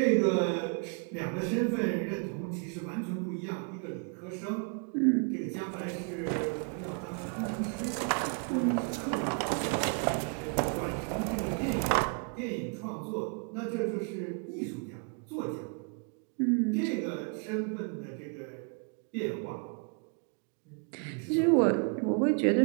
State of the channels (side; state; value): left; quieter; 38.5 dB